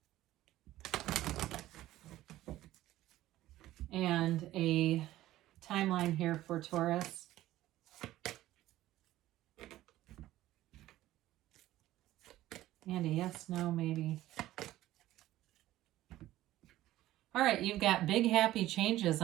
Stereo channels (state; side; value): quieter; left; 15.0 dB